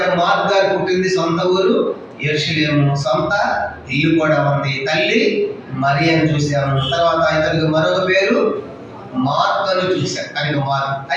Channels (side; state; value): both; identical; correlation 1.00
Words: మార్కు గారు పుట్టింది సొంత ఊరు యెరూషలేము, సొంత ఇల్లు కూడా ఉంది. తల్లి మరియను చూసాము. తర్వాత ఇతనికి మరొక పేరు మార్కు అని చూశారు. కనుక మార్కు.